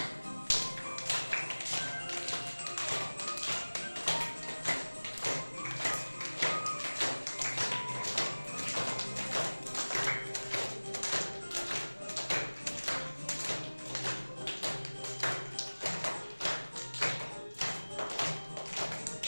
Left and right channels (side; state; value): both; inverted; correlation -1.00